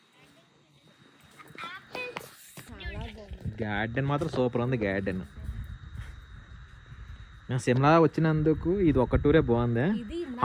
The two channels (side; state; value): both; identical; correlation 1.00